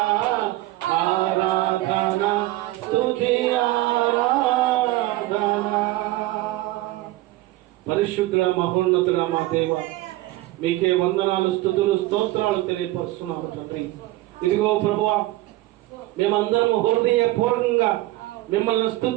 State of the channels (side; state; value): left; quieter; 17.5 dB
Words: ఆరాధన స్తుతి ఆరాధన. పరిశుద్ధుల మహోన్నతుల మా దేవ, మీకే వందనాలు స్తుతులు స్తోత్రాలు తెలియపరుస్తున్నాము తండ్రి. ఇదిగో ప్రభువా, మేమందరము హృదయపూర్వకంగా మిమ్మల్ని